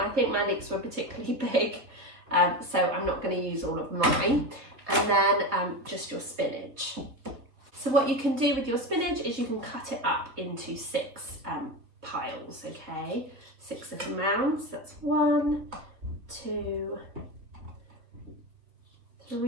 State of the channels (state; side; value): late; left; 3.8 ms